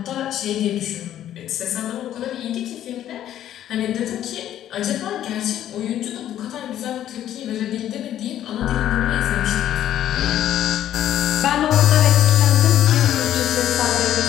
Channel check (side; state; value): right; quieter; 11.6 dB